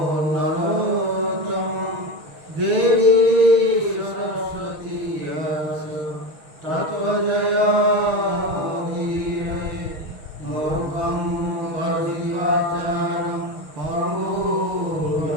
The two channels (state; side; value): late; left; 6.3 ms